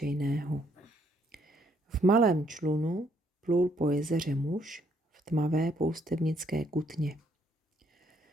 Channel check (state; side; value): normal; both; correlation 0.70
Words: V malém člunu plul po jezeře muž v tmavé poustevnické kutně.